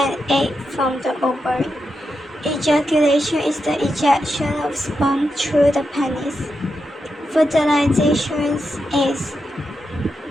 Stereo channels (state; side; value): normal; both; correlation 0.86